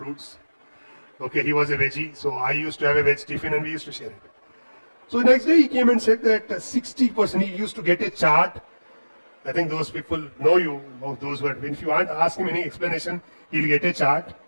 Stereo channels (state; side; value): inverted; both; correlation -1.00